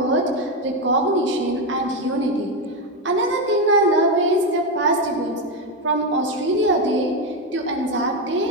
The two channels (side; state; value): both; normal; correlation 0.09